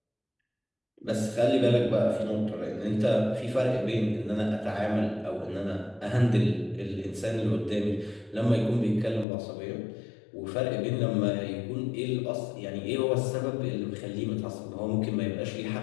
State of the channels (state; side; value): drops out; right; at 9.2 s